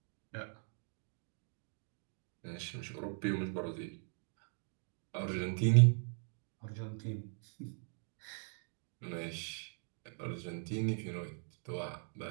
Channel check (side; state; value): left; silent; 51 dB below the other